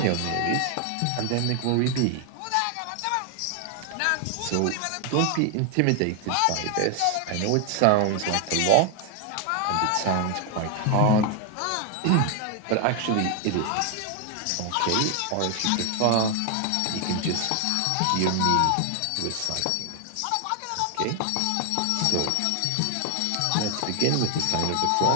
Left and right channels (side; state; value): both; different; correlation 0.00